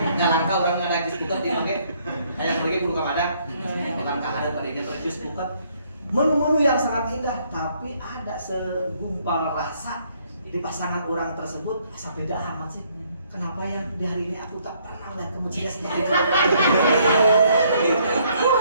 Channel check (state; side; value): inverted; both; correlation -0.67